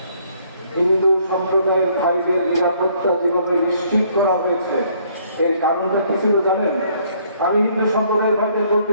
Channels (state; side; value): inverted; both; correlation -0.64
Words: হিন্দু সম্প্রদায়ের ভাইদের নিরাপত্তা যেভাবে নিশ্চিত করা হয়েছে, এর কারণটা কি ছিল জানেন? আমি হিন্দু সম্প্রদায়ের ভাইদের বলতে